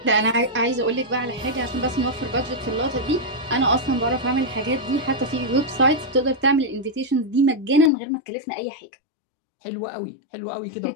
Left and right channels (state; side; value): drops out; right; at 7.9 s